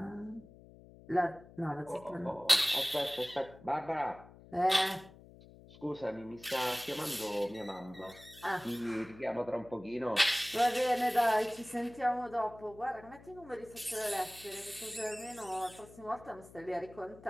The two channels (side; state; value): left; noise; hum, 20 dB below the sound